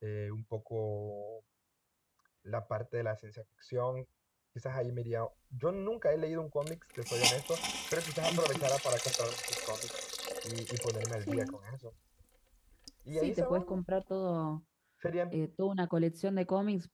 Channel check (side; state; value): both; identical; correlation 1.00